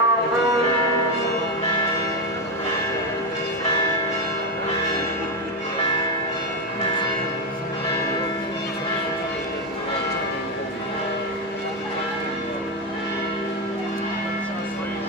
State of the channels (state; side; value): normal; both; correlation 0.10